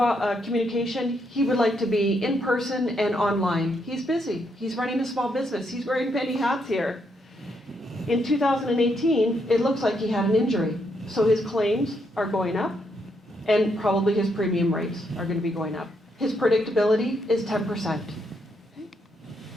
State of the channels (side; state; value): both; normal; correlation 0.77